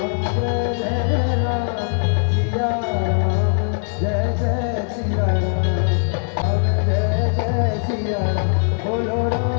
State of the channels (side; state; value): right; silent; 65 dB below the other